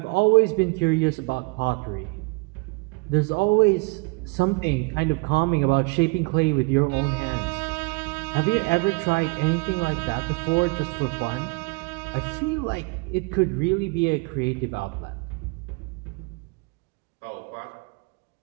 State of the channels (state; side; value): quieter; left; 29.8 dB